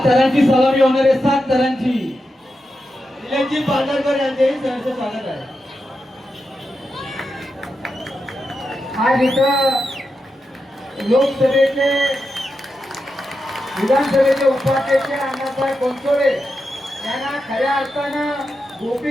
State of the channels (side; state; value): both; normal; correlation 0.88